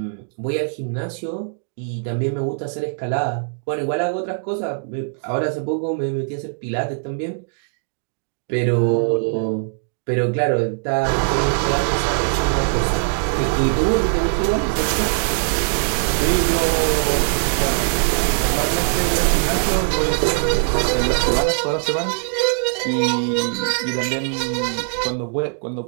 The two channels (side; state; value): left; silent; digital silence